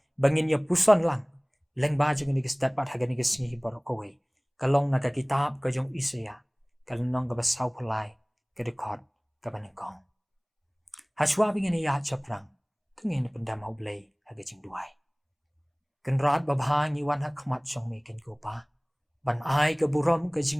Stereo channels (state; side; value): identical; both; correlation 1.00